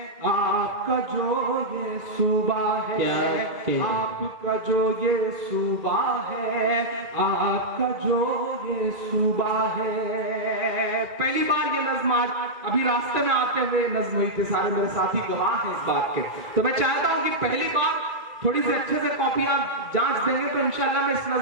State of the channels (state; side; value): late; left; 2.1 ms